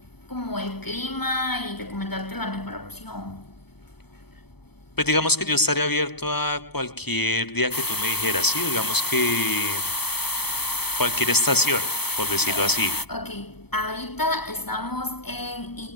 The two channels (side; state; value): right; late; 0.97 ms